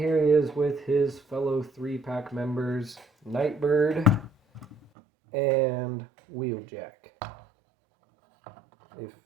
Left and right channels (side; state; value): left; drops out; at 4.9 s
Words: he is with his fellow 3-pack members, Nightbird and Wheeljack. If